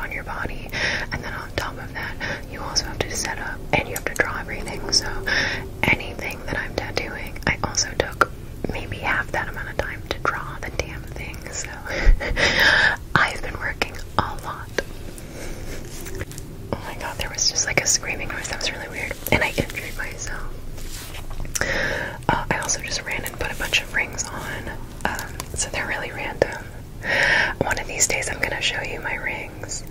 your body, and then on top of that, you also have to set up and you have to draw everything. So anything that I'm tattooing, I also took maybe half that amount of time to draw the damn thing. So I've been working a lot. Oh my god, there was just like a screaming noise. That was really weird, and I injured myself. I also just ran and put a bunch of rings on, so they're really random. One of these days I'm gonna show you my rings,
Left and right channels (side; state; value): both; identical; correlation 1.00